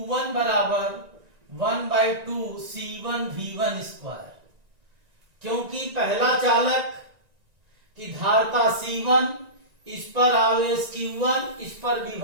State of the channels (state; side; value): late; left; 1.9 ms